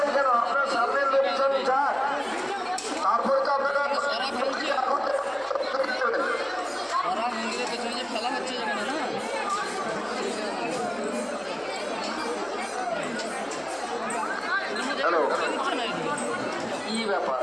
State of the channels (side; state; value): right; noise; hum, 29 dB below the sound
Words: কেন? আপনার সামনের লোকজন যাক, তারপরে তো আপনারা ফেলা হচ্ছে যেখানে না হ্যালো, কি ব্যাপার?